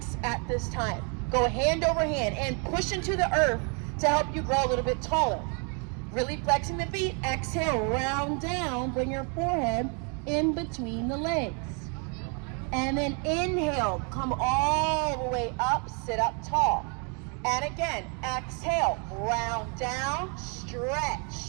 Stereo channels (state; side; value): quieter; left; 36.9 dB